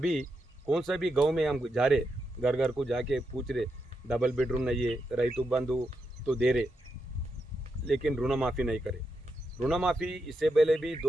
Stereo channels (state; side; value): normal; both; correlation 0.84